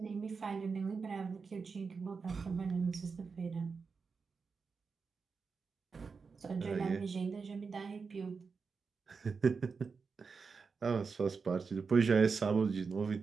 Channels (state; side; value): quieter; left; 5.0 dB